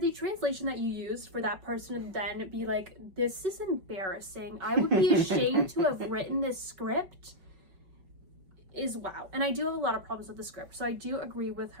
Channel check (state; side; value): late; left; 5.3 ms